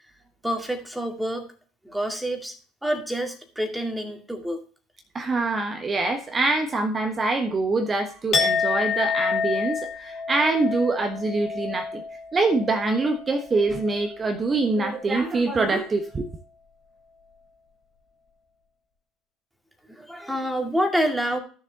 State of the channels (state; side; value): normal; both; correlation 0.78